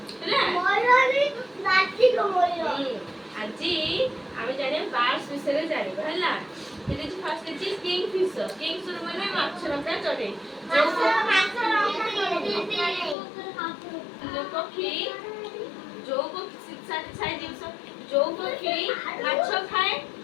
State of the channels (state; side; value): drops out; right; at 13.2 s